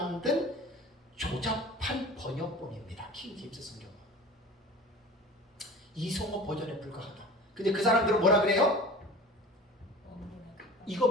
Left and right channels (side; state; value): both; normal; correlation 0.39